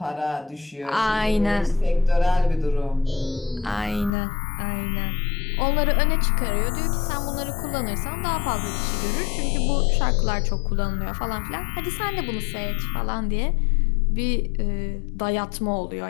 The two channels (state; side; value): drops out; right; at 4.1 s